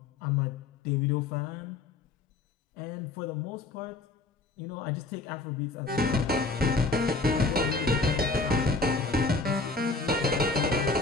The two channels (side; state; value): right; quieter; 3.7 dB